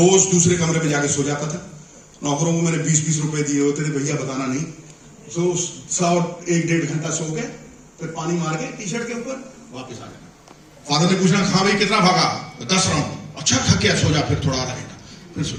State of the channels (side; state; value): both; identical; correlation 1.00